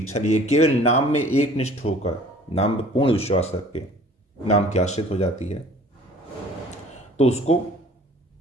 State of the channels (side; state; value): both; normal; correlation 0.50